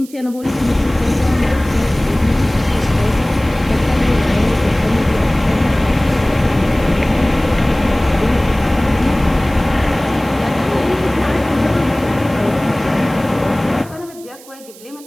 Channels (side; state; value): right; noise; hiss, 21 dB below the sound